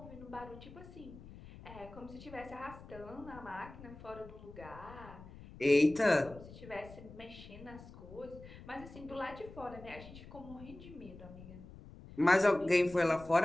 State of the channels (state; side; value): noise; left; rumble, 16 dB below the sound